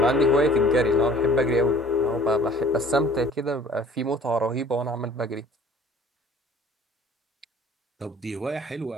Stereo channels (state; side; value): normal; both; correlation 0.51